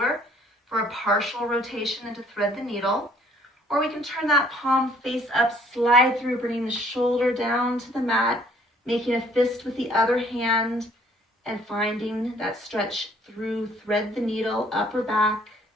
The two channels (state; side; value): normal; both; correlation 0.60